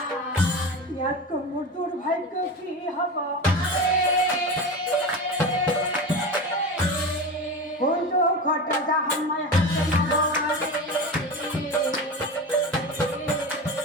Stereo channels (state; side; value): normal; both; correlation 0.26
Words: ইয়াতকৈ মোৰ দুৰ্ভাগ্য কি হ'ব কোনটো ঘট যা সময় হাতে নগৰে